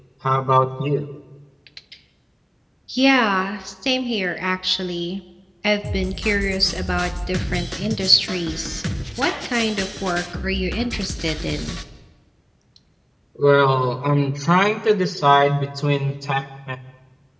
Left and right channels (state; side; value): identical; both; correlation 1.00